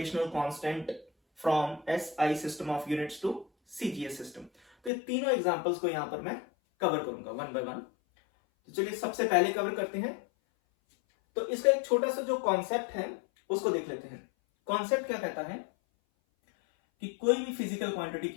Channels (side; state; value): right; drops out; at 4.9 s